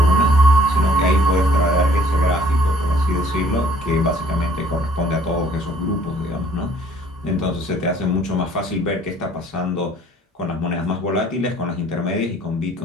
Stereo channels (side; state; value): both; normal; correlation 0.58